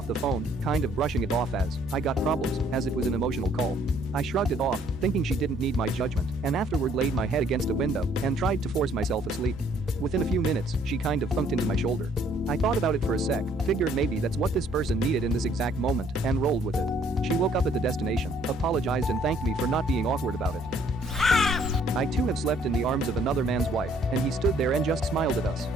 the phone, kind of brushing it off as, I got problems, as it was an emotional call. I shrugged it off, thinking she didn't need my judgment, and afterward laid my head against a window and tried to force myself asleep. Within a few minutes, she kind of thunked into my shoulder. I thought about it for a sec, figured maybe that's what this person needed in this exact moment, and rolled with it. She woke up at the destination, apologized and thanked me for not being awkward about it. I too have slept in the arms of another man's wife, and he stood there and just smiled at us.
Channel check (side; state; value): right; noise; hum, 17 dB below the sound